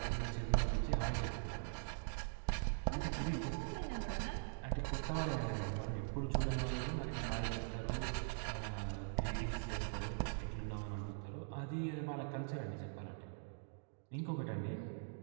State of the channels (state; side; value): silent; left; digital silence